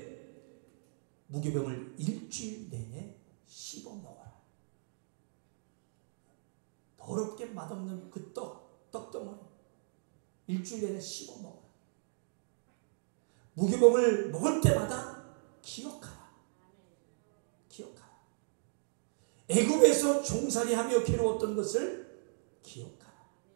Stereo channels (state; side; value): silent; left; digital silence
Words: 무교병을 일주일 내내 씹어 먹어라. 더럽게 맛없는 그 떡덩어리 일주일 내내 씹어 먹어라. 무교병을 먹을 때마다 기억하라. 기억하라. 애굽에서 종살이하며 괴로웠던 것을 기억하라.